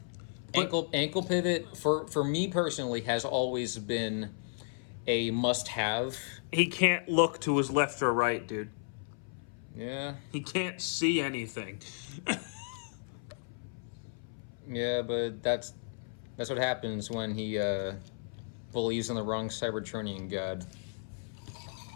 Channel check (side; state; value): right; silent; 55 dB below the other